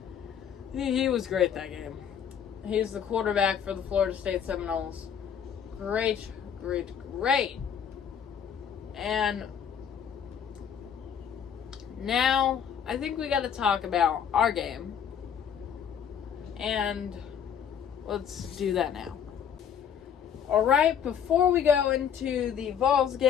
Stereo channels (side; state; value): right; quieter; 8.0 dB